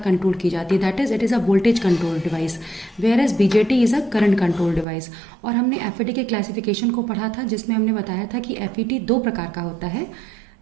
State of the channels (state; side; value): drops out; left; at 4.9 s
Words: की जाती है। That is it is a voltage control device, whereas BJT is a current control device. और हमने FET के क्लासिफिकेशन को पढ़ा था, जिसमें हमने बताया था कि FET दो प्रकार का होता है,